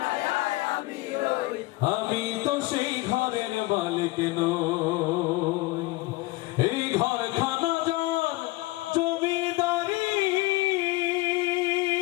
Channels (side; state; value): right; quieter; 21.1 dB